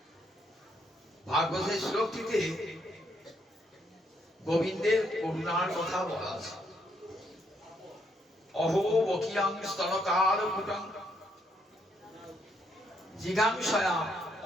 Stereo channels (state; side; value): normal; both; correlation 0.74